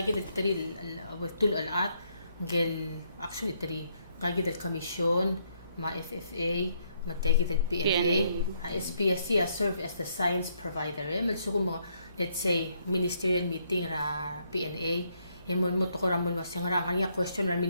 tool alat gel actually three gagit el commission MAFE matagit el PNA SPSC serve as the science provider malso mo let's say ministerial meeting ra PNA mo to ko ramon masyang ra kanya question ra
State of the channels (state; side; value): inverted; both; correlation -0.73